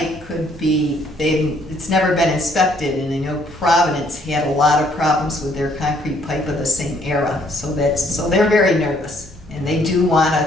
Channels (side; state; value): both; normal; correlation 0.66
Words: could be, it's never been inspected, and I know Providence had a lot of problems with their concrete pipe of the same era, so they're very nervous, and they do